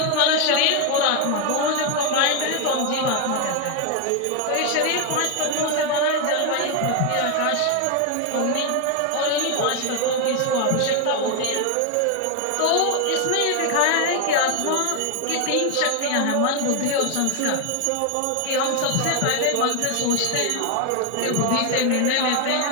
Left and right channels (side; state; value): both; different; correlation 0.01